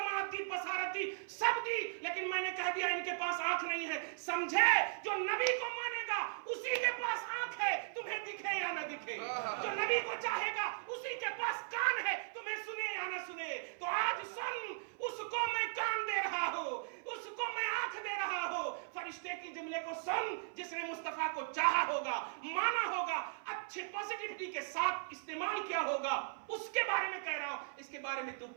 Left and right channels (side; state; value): left; silent; 53 dB below the other